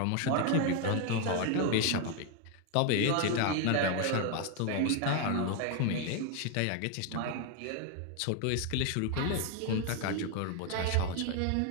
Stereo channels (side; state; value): both; different; correlation 0.01